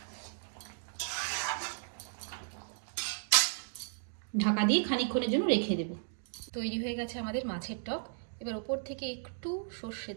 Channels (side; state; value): left; silent; digital silence